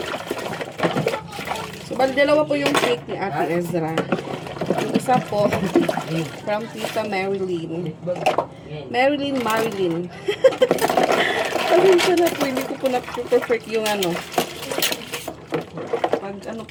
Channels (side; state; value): both; identical; correlation 1.00